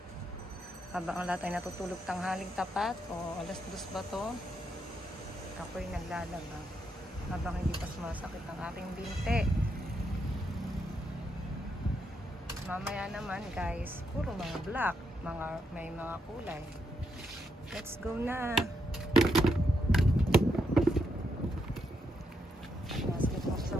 Habang ang lahat ay natutulog tanghaling tapat o alas 2 ba to? Ako'y naglalaba. Habang hindi pa sumasakit ang aking binti. Mamaya naman guys, puro mga black. May mga kulay. Let's go na!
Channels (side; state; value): both; normal; correlation 0.80